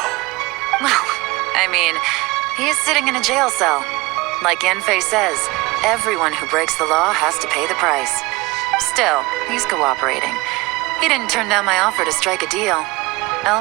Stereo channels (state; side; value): quieter; left; 22.8 dB